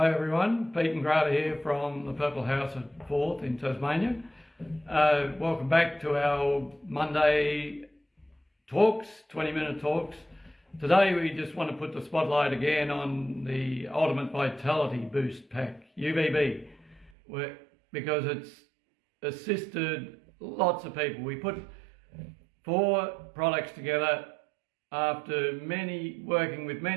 everyone, Pete and Grata here from the Purple House at Forth in Tasmania. Welcome back to our Monday talks, 20-minute talks. Today we just want to put the spotlight again on the Ultimate Vitality Boost Pack, UVB, because it's assisted lots of people. We put 4 products together after working with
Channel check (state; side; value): drops out; left; at 17.1 s